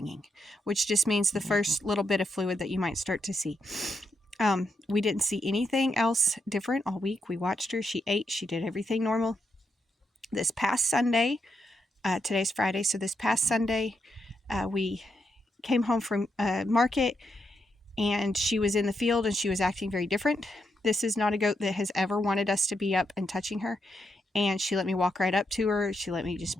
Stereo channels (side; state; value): both; normal; correlation 0.82